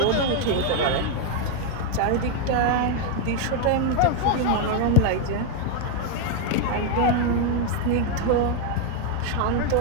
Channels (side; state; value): both; different; correlation 0.01